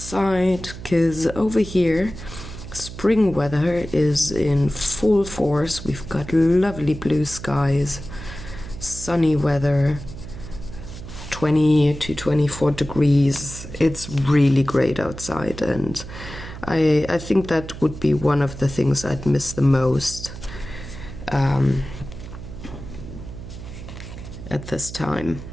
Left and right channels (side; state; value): right; noise; hum, 12 dB below the sound